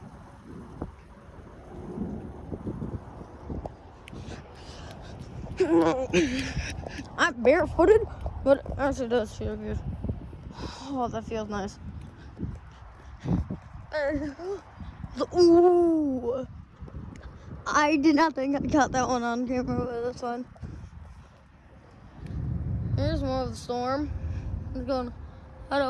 I'm barefooted, but it actually does feel good. Oh, that feels nice. Ooh. I did not think I caught that one on camera, but that's fine. Here's more of the storm. I'm going to head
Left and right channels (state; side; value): identical; both; correlation 1.00